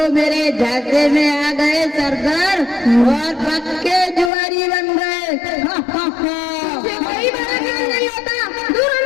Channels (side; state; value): right; drops out; at 4.3 s